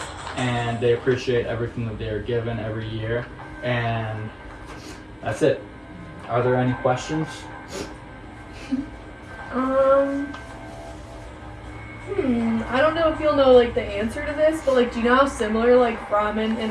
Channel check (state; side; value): identical; both; correlation 1.00